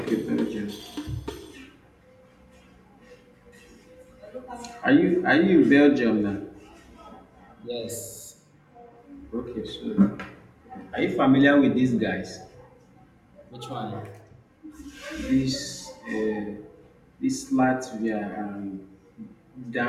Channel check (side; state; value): both; identical; correlation 1.00